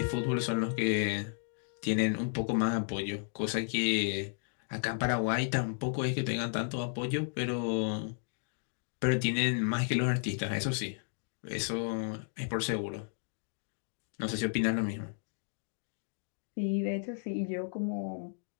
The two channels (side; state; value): right; silent; digital silence